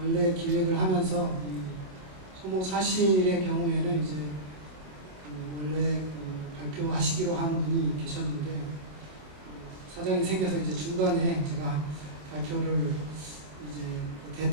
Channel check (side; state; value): left; late; 27 ms